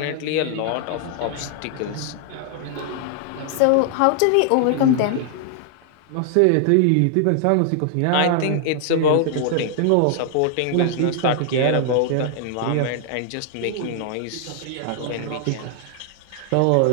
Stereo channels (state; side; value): different; both; correlation 0.00